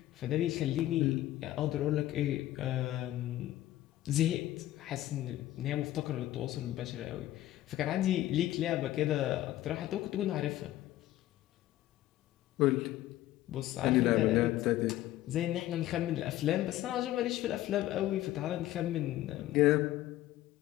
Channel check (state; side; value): quieter; right; 14.6 dB